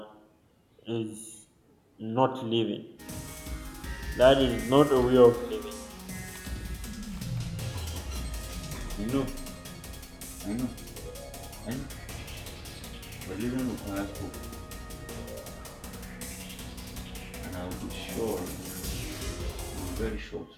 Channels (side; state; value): both; identical; correlation 1.00